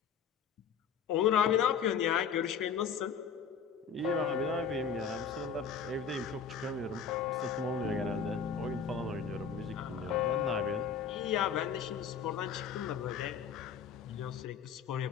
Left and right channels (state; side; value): quieter; right; 6.7 dB